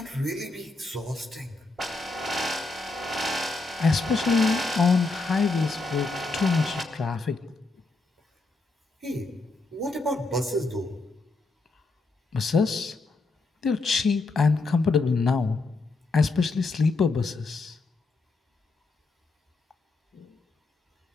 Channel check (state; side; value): quieter; right; 3.5 dB